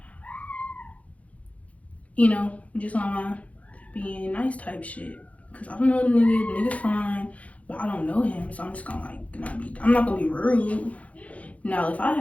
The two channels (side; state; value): right; late; 0.066 ms